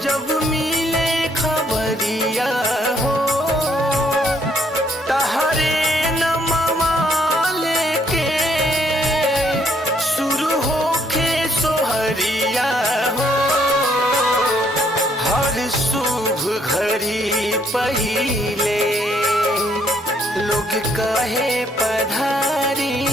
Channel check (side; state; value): both; normal; correlation 0.69